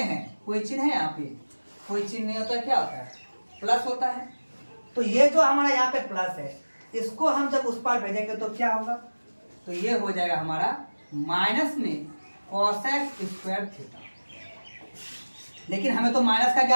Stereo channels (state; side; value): inverted; both; correlation -1.00